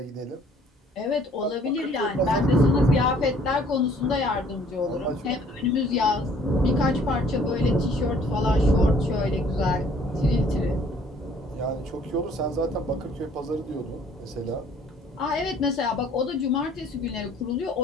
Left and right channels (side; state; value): both; normal; correlation 0.58